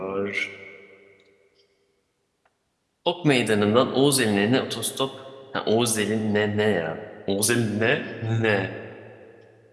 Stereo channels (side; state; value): both; identical; correlation 1.00